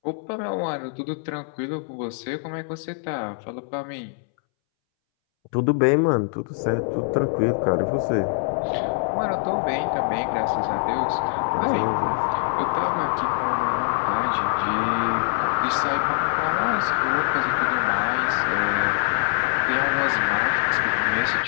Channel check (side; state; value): right; silent; 63 dB below the other